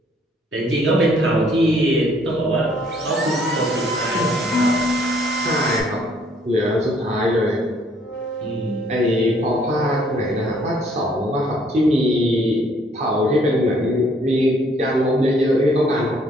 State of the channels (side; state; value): both; normal; correlation 0.64